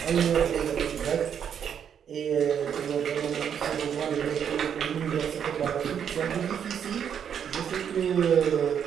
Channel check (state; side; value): quieter; left; 8.2 dB